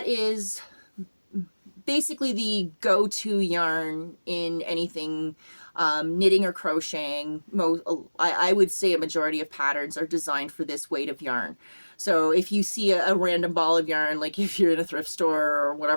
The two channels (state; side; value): inverted; both; correlation -1.00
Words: is basically the go-to yarn in anything knitting or crocheting. I would say a majority of patterns are designed for this weight of yarn. So if you see a random ball of yarn, like if you're in a thrift store or